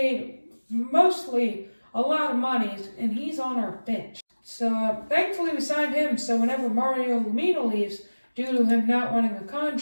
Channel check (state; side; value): inverted; both; correlation -1.00